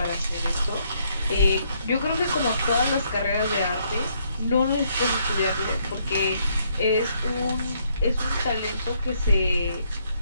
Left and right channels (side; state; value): both; inverted; correlation -0.71